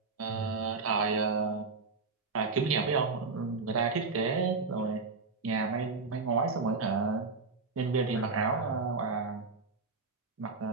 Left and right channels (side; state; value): left; quieter; 4.3 dB